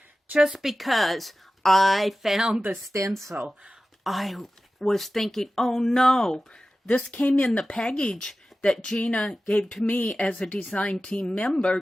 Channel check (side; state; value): both; normal; correlation 0.95